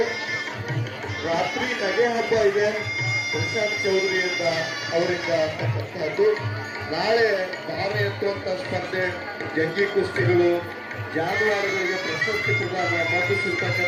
ರಾತ್ರಿ ನಗೆ ಹಬ್ಬ ಇದೆ ಪ್ರಶಾಂತ್ ಚೌಧರಿಯಿಂದ ಅವರಿಂದ ಅಂತಕ್ಕಂಥದ್ದು. ನಾಳೆ ಭಾರ ಎತ್ತುವಂಥ ಸ್ಪರ್ಧೆ, ಜಂಗಿ ಕುಸ್ತಿಗಳು, ಜಾನುವಾರುಗಳಿಗೆ ಪ್ರಶಸ್ತಿ ಪ್ರದಾನ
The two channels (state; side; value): identical; both; correlation 1.00